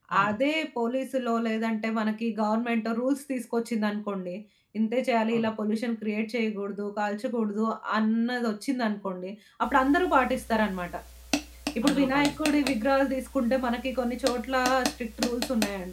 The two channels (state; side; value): identical; both; correlation 1.00